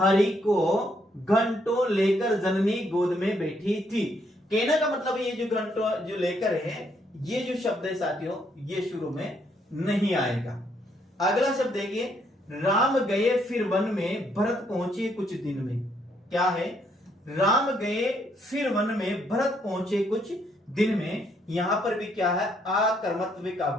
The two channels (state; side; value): normal; both; correlation 0.72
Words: को घंटों लेकर जननी गोद में बैठी थी। कहने का मतलब ये जो घंटों जो लेकर है, ये जो शब्द है साथियों, ये शुरू में नहीं आएगा। अगला शब्द देखिए, राम गए फिर वन में, भरत पहुंचे कुछ दिन में। क्या है? राम गए फिर वन में, भरत पहुंचे कुछ दिन में। यहां पर भी क्या है? आकर्मत्व